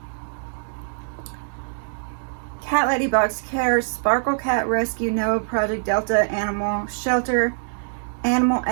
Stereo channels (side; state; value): left; silent; digital silence